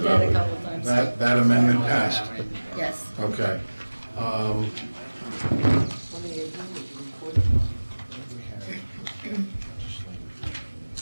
that of a it. couple times. That amendment passed. Yes. Okay.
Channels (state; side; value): inverted; both; correlation -1.00